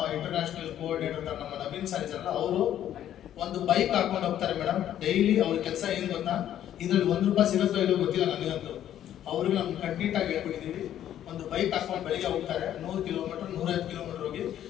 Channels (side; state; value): right; quieter; 11.2 dB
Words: ಇಂಟರ್ನ್ಯಾಷನಲ್ ಕೋಆರ್ಡಿನೇಟರ್ ನಮ್ಮ ನವೀನ್ ಸರ್ ಇದ್ದಾರಲ್ಲ, ಅವರು ಒಂದು ಬೈಕ್ ಹಾಕೊಂಡು ಹೋಗ್ತಾರೆ ಮೇಡಮ್. ಡೈಲಿ ಅವ್ರ ಕೆಲಸ ಏನು ಗೊತ್ತಾ, ಇದ್ರಲ್ಲಿ ₹1 ಸಿಗುತ್ತೋ ಇಲ್ಲೋ ಗೊತ್ತಿಲ್ಲ ನನಗಂತೂ. ಅವ್ರಿಗೆ ನಮ್ಗೆ ಕಂಪ್ಲೀಟ್ ಆಗಿ ಹೇಳ್ಬಿಟ್ಟಿದ್ದೀವಿ. ಒಂದು ಬೈಕ್ ಹಾಕೊಂಡು ಬೆಳಿಗ್ಗೆ ಹೋಗ್ತಾರೆ, 100 ಕಿಲೋಮೀಟರ್ 105 ಕಿಲೋಮೀಟರ್ ಹೋಗಿ